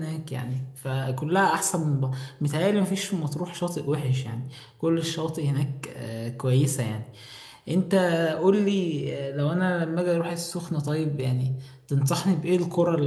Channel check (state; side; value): identical; both; correlation 1.00